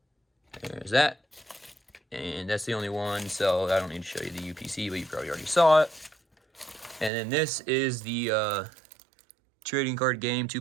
There's that. And that's the only one, so I don't need to show you the UPC, but you probably already saw it. And then this is the trading card game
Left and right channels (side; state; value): left; drops out; at 7.1 s